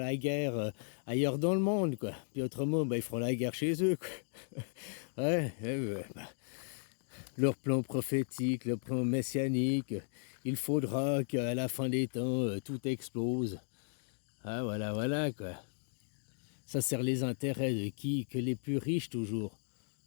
guerre ailleurs dans le monde, quoi. Puis autrement, bah, ils feront la guerre chez eux, quoi. Ouais, ouais, bah, leur plan prophétique, leur plan messianique, il faudra qu'à la fin des temps, tout explose. Ah, voilà, voilà, quoi. Ça sert les intérêts de qui? Que les plus riches, toujours.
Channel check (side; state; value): right; silent; digital silence